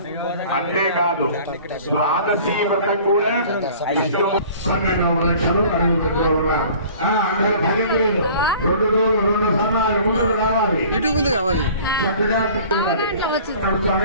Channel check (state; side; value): inverted; both; correlation -0.48